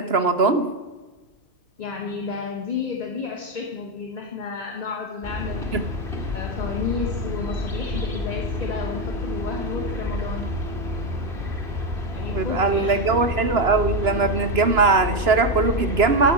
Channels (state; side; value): late; left; 2.9 ms